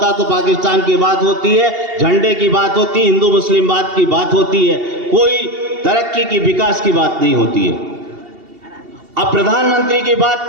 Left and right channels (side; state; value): left; late; 2.8 ms